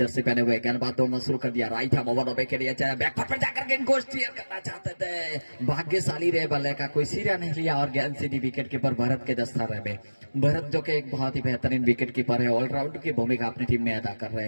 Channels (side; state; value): both; inverted; correlation -1.00